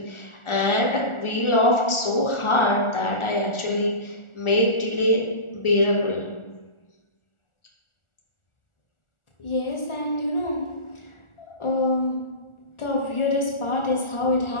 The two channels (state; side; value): late; right; 1.4 ms